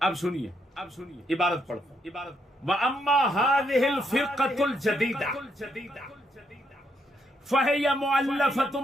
اب سنیے عبارت پڑھتا ہوں۔ وَأَمَّا هَذِهِ الْفِرْقَةُ الْجَدِيدَةُ فَهِيَ مُؤَلَّفَةٌ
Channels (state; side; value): normal; both; correlation 0.76